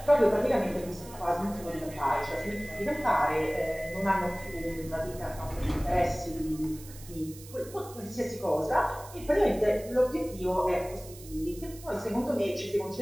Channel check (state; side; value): noise; right; hiss, 18 dB below the sound